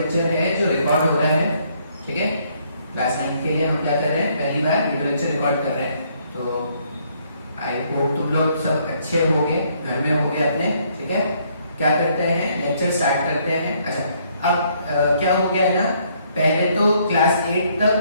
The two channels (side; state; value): both; inverted; correlation -0.68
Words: है जो रिकॉर्ड हो रहा है। ठीक है, क्लास 9th के लिए हम क्या कर रहे हैं, पहली बार वीडियो लेक्चर रिकॉर्ड कर रहे हैं। तो आई होप तुम लोग सब अच्छे होंगे, घर में होंगे अपने। ठीक है, क्या करते हैं, लेक्चर स्टार्ट करते हैं। अच्छा, अब क्या हो गया है ना, पहले तो क्लास 8